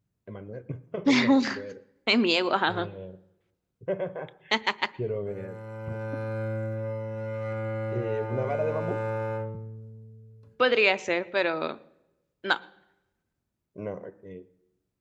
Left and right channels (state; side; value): identical; both; correlation 1.00